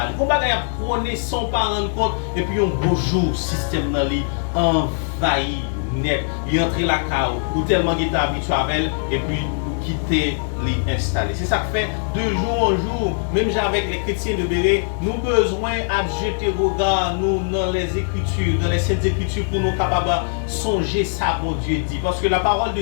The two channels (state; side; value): silent; right; digital silence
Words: On va prôner sans pas rendre compte. Et puis, un beau jour, le système dans lui envahit net. Il entre la cave ou tellement qu'il est habitué avec elle. Et puis, quitter les installer. C'est ça que fait de jour en jour, même avec les chrétiens de Béret, nous besoin de jeter regard nous dans les Écritures, dans les Saintes Écritures pour nous capables de songer ça, bon Dieu dit. Parce que la parole de